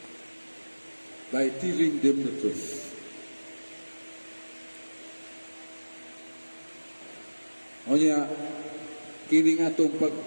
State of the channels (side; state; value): both; inverted; correlation -1.00